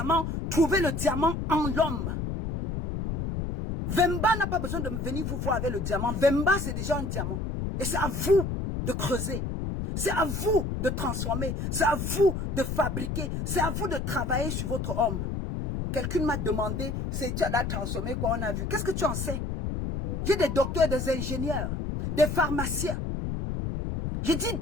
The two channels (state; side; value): noise; left; rumble, 3 dB below the sound